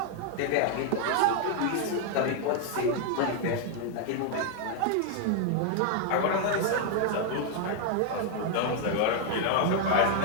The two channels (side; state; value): both; different; correlation 0.00